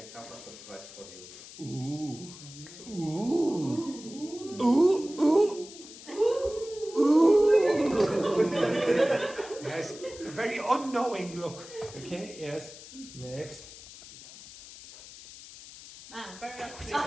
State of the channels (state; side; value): noise; left; hiss, 16 dB below the sound